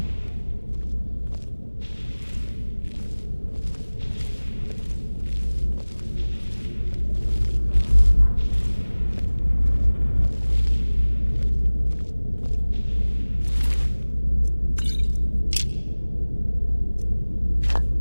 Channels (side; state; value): both; inverted; correlation -1.00